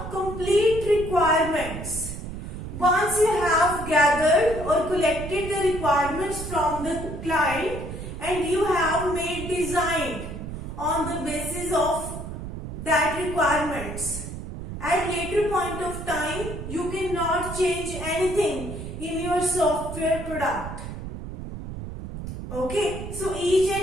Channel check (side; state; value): right; noise; rumble, 8 dB below the sound